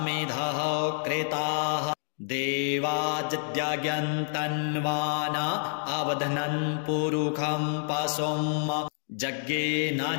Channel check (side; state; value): right; silent; 59 dB below the other